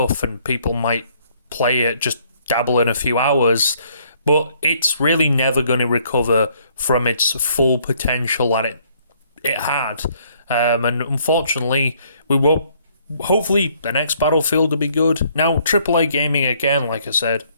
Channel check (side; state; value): both; inverted; correlation -0.65